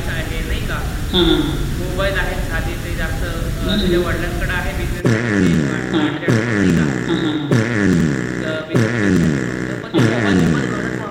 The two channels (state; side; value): identical; both; correlation 1.00